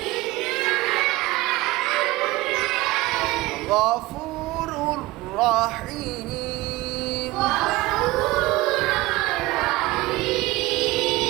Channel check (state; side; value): quieter; left; 19.7 dB